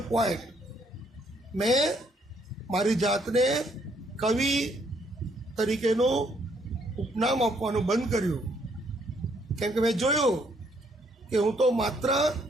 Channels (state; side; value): normal; both; correlation 0.69